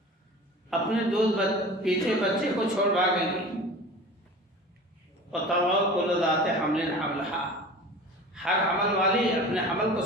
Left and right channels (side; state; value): both; normal; correlation 0.38